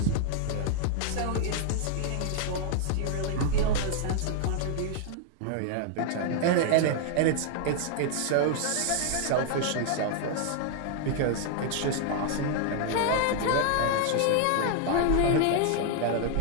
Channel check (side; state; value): both; different; correlation 0.00